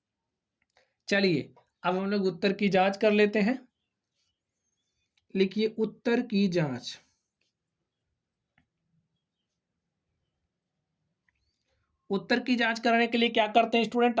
चलिए अब हम लोग उत्तर की जांच कर लेते हैं। लिखिए उत्तर की जांच। उत्तर की जांच कराने के लिए क्या करते हैं स्टूडेंट,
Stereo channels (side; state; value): both; identical; correlation 1.00